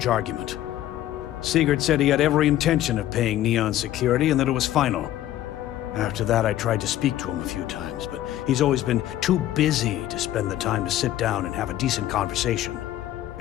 argument. Sigurd said he had every intention of paying Neon security and that it was final. After that, I tried to speak to him a few times, but he's always been too busy to spend the time to sit down and have a decent conversation.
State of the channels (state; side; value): quieter; right; 13.3 dB